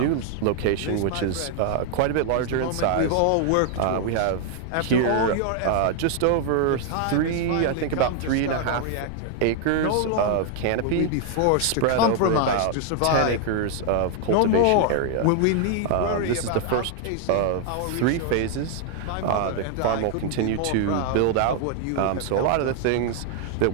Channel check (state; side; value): different; both; correlation 0.00